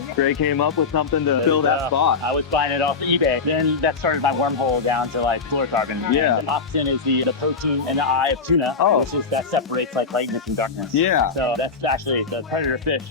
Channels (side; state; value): right; quieter; 4.7 dB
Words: Greg came up with something to fill that spot. I was buying it off eBay. Then that started my wormhole down to like fluorocarbon. Yeah. And Opsin is the protein in the eye of tuna, which is that separates like lightness and darkness. Yeah. So that's actually the predator fish